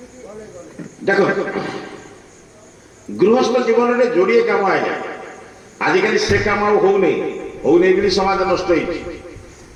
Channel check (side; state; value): both; identical; correlation 1.00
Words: ଦେଖନ୍ତୁ ଗୃହସ୍ଥ ଜୀବନରେ ଯୋଡ଼ିଏ କାମ ଆଜ୍ଞା। ଆଜିକାଲି ସେ କାମ ଆଉ ହଉନି ବୋଲି ସମାଜ ନଷ୍ଟ ହେଇଛି।